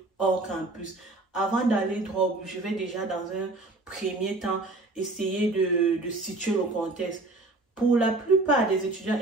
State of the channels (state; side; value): quieter; left; 3.0 dB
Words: hors campus. Avant d'aller droit au but, je vais déjà dans un premier temps essayer de situer le contexte. Pour la plupart des étudiants